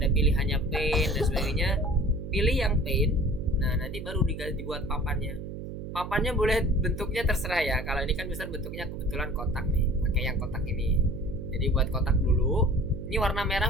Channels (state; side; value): noise; right; hum, 8 dB below the sound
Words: pilihannya paint dan sebagainya. Pilih yang paint. Nah, nanti baru dibuat papannya. Papannya boleh bentuknya terserah ya. Kalau ini kan misal bentuknya kebetulan kotak nih, pakai yang kotak ini. Jadi buat kotak dulu. Ini warna merah